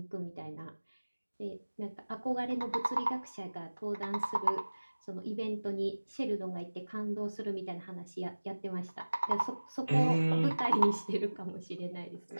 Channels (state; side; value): inverted; both; correlation -1.00